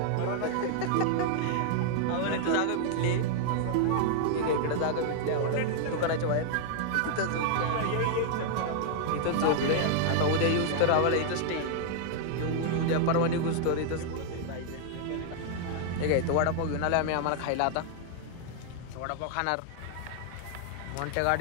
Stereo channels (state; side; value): different; both; correlation 0.00